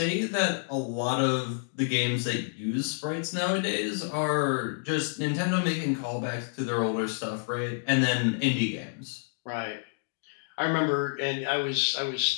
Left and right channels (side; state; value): right; silent; digital silence